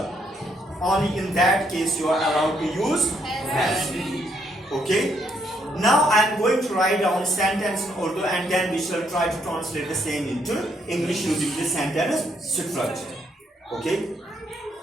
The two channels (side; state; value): both; normal; correlation 0.73